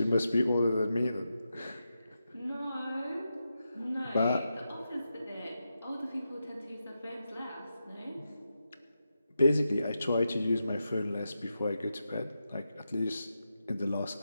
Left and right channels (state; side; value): inverted; both; correlation -0.88